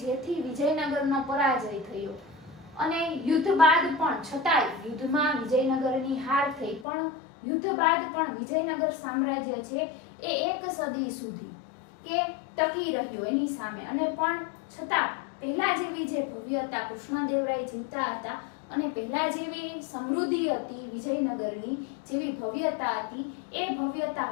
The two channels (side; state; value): right; drops out; at 6.9 s